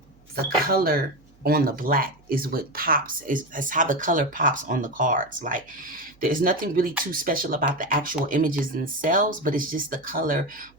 color on the black is what pops, is how the color pops on the cards. Like, there's nothing really too special about the actual images themselves, but it's just the color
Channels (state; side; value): noise; right; hum, 30 dB below the sound